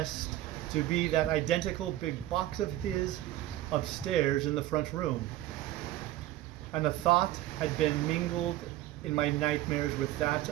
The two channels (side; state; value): left; quieter; 14.8 dB